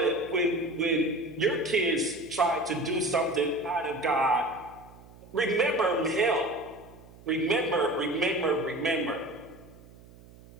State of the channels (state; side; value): noise; right; hum, 22 dB below the sound